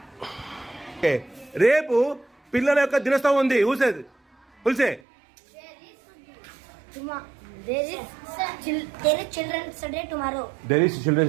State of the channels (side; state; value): left; drops out; at 5.0 s